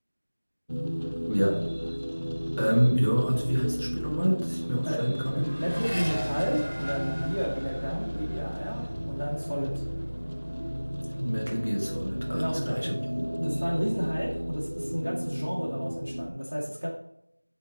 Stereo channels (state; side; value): inverted; both; correlation -1.00